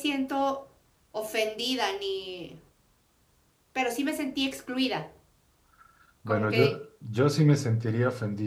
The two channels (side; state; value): both; identical; correlation 1.00